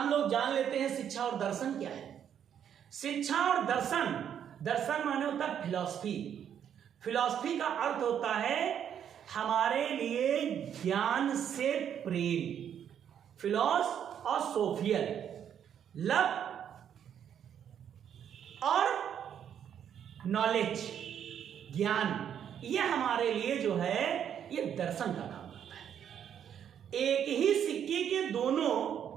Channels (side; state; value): left; quieter; 9.0 dB